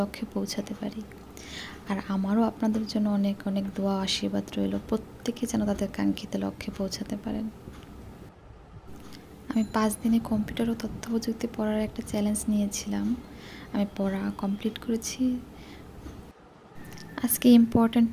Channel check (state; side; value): identical; both; correlation 1.00